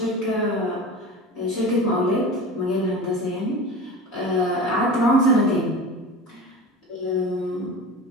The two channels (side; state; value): both; normal; correlation 0.32